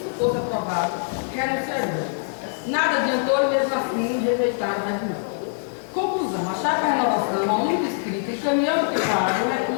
fosse aprovado, renunciaria. Nada adiantou e, mesmo assim, rejeitaram o regimento. Conclusão, a Chapa Renovação, a única escrita, encaminhando que paga o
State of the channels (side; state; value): right; silent; digital silence